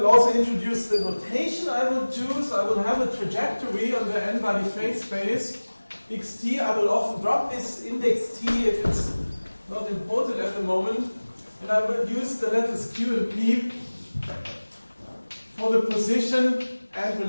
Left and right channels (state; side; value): inverted; both; correlation -1.00